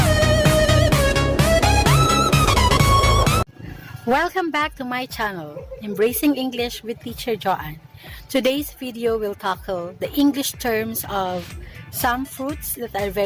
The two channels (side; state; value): both; identical; correlation 1.00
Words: Welcome back to my channel, Embracing English with Teacher Joanne. Today's video will tackle the English terms of some fruits that are